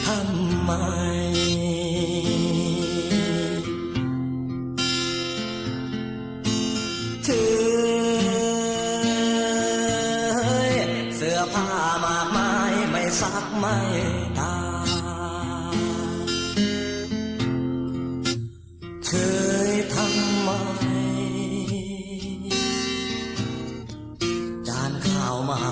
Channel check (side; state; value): both; identical; correlation 1.00